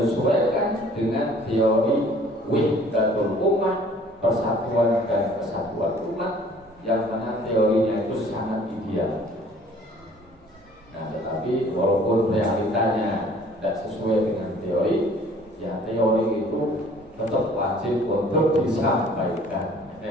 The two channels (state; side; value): normal; both; correlation 0.54